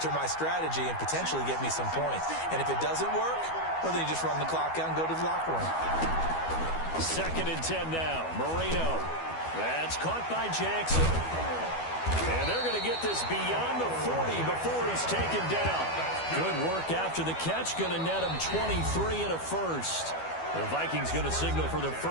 my strategy and potentially get me some points. And if it doesn't work, well, then you just run the clock out and go to the locker room. 2nd and 10 now. Marino. That's caught by Jackson. And they're going to get this beyond the 40 before he's taken down. Good work after the catch. Going to net him 23 and a first. The Vikings going to signal for the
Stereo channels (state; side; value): late; right; 12 ms